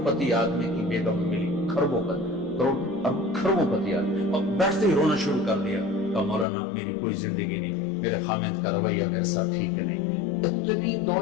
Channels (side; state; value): right; drops out; at 6.5 s